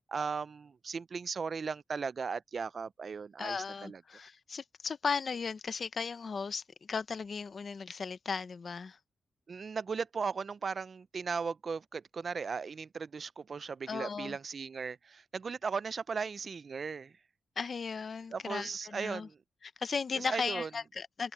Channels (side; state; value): both; normal; correlation 0.85